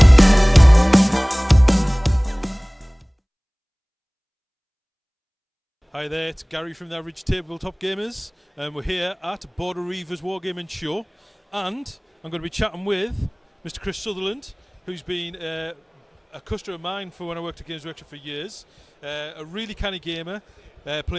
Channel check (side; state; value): both; identical; correlation 1.00